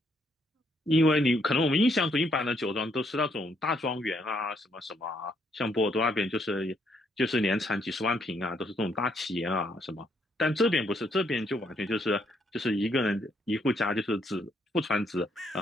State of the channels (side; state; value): both; normal; correlation 0.72